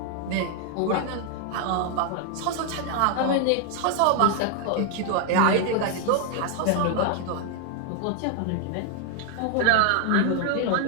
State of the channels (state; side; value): different; both; correlation 0.00